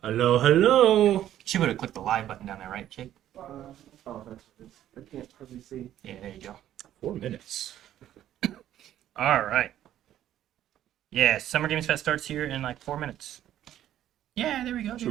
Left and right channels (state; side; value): quieter; left; 11.9 dB